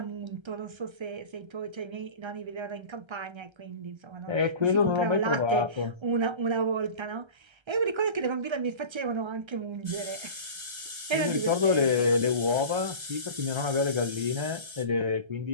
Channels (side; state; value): left; late; 1.3 ms